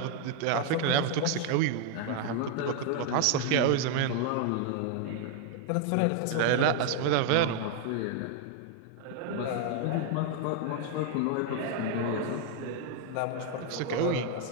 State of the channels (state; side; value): different; both; correlation 0.00